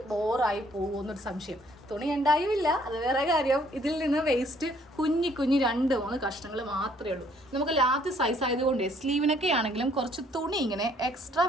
ബോറായി പോകുമെന്നൊരു സംശയം. തുണി ഉണ്ടായില്ല, അത് വേറെ കാര്യം. ഇതിൽ നിന്ന് വേസ്റ്റ് കുഞ്ഞി 2-3 കഷ്ണങ്ങൾ മാത്രമേ ഉള്ളൂ. നമുക്ക് ലാർജ് സൈസ് ആയതുകൊണ്ട് സ്ലീവിനൊക്കെ ആണെങ്കിലും കുറച്ച് തുണി ഇങ്ങനെ എക്സ്ട്രാ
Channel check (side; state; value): both; normal; correlation 0.63